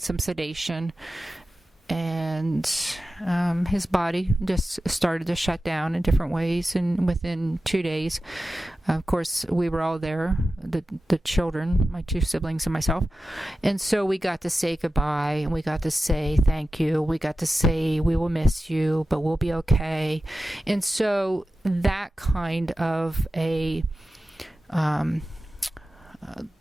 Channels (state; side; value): normal; both; correlation 0.94